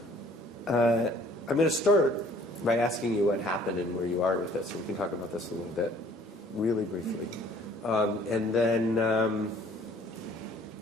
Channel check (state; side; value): normal; both; correlation 0.56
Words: going to start by asking you what happened and where you are with this. So we can talk about this a little bit, really briefly. And then